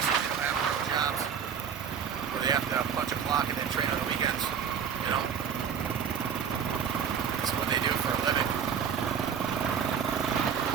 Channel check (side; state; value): left; quieter; 7.4 dB